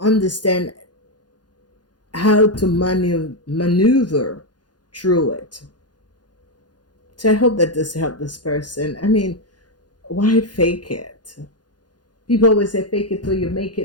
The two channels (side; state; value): right; late; 0.69 ms